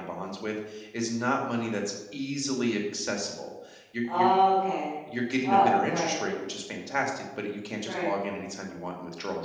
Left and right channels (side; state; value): both; identical; correlation 1.00